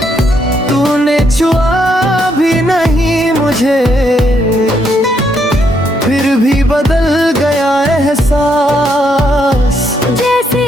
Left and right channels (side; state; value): both; normal; correlation 0.75